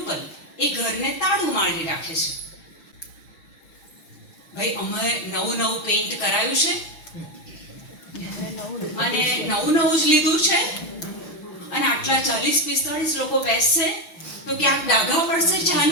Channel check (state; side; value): late; right; 6.1 ms